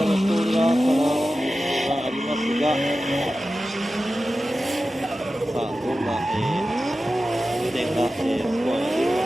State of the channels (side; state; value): both; normal; correlation 0.94